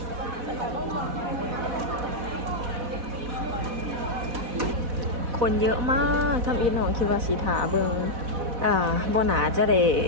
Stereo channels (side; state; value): left; late; 4.1 ms